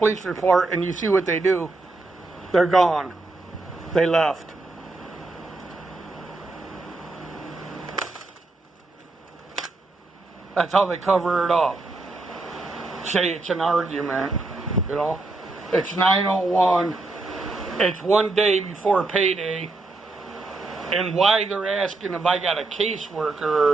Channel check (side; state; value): left; quieter; 3.2 dB